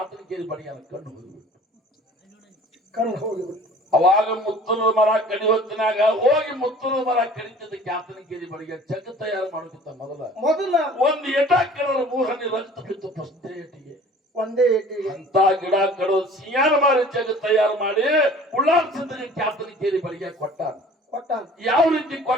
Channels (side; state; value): both; normal; correlation 0.48